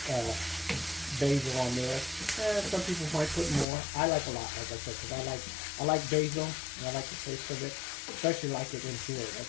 basil on there. Some people might put more. I like a lot, like I said, because I like basil and I like the taste of it. Especially like it in here.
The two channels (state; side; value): drops out; right; at 3.7 s